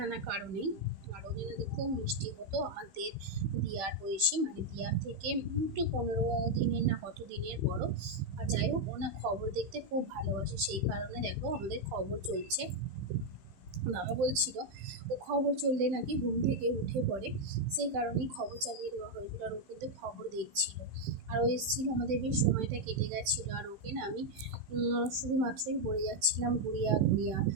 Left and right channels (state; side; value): late; left; 15 ms